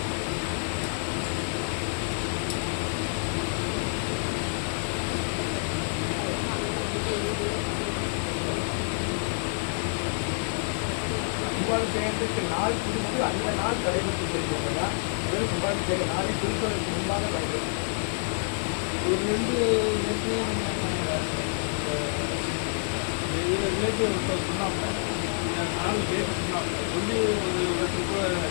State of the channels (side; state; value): right; silent; digital silence